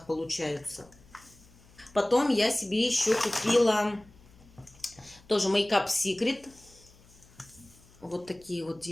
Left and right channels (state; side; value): noise; left; hum, 26 dB below the sound